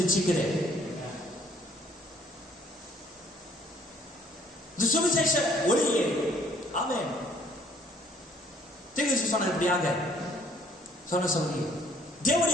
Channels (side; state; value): both; normal; correlation 0.61